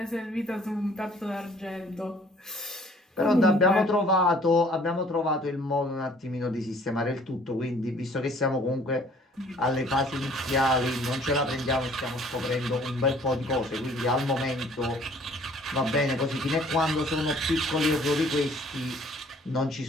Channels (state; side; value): normal; both; correlation 0.56